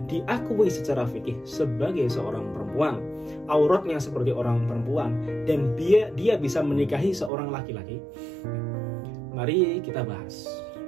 diakui secara fikih sebagai seorang perempuan, auratnya seperti orang perempuan, dan dia bisa menikahi seorang laki-laki? Mari kita bahas.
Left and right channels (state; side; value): drops out; left; at 7.3 s